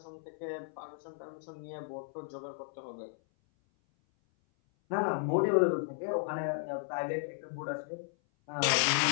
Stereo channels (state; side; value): silent; right; 55 dB below the other